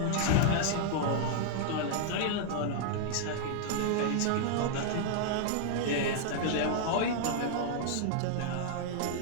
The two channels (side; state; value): both; different; correlation -0.01